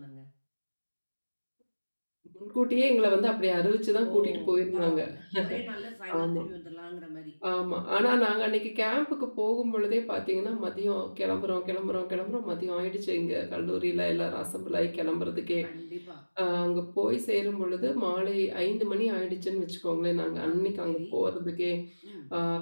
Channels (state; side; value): inverted; both; correlation -1.00